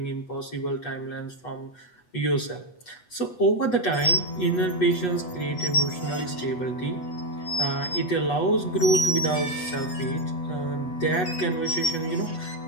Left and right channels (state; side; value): late; right; 8.1 ms